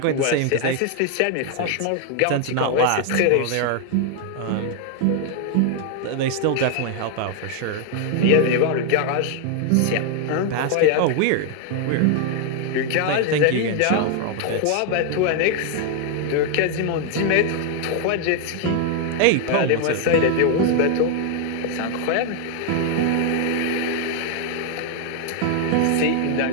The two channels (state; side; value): different; both; correlation 0.00